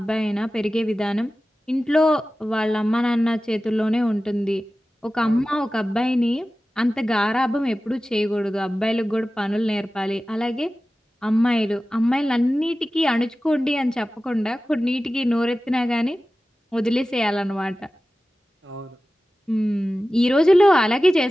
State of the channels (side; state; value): both; normal; correlation 0.95